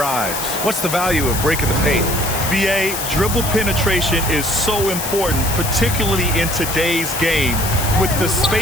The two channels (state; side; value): noise; left; hiss, 5 dB below the sound